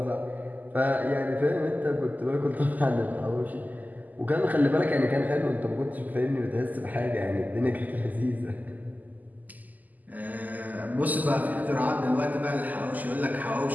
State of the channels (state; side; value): late; left; 0.081 ms